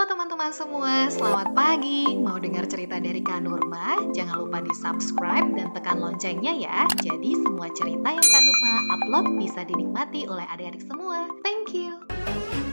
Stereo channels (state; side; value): inverted; both; correlation -1.00